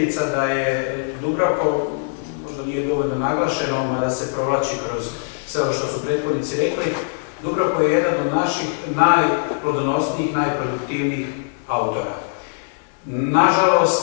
da je Dubravko, možda nije dovoljno naglašeno, mada se provlači kroz sve ovo što su prethodnici rekli, Dubravko je jedan od naših najplodonosnijih, najproduktivnijih autora.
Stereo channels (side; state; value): right; silent; digital silence